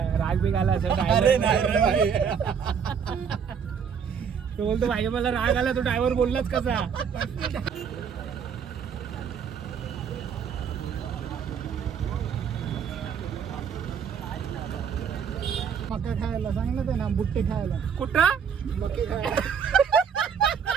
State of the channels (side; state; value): left; quieter; 7.1 dB